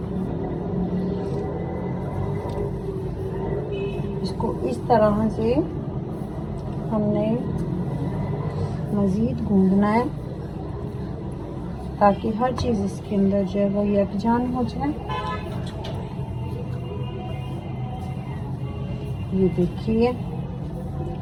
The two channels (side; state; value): both; identical; correlation 1.00